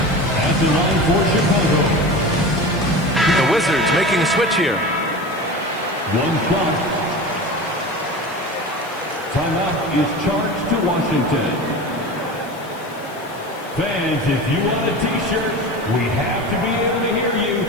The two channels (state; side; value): noise; left; hiss, 22 dB below the sound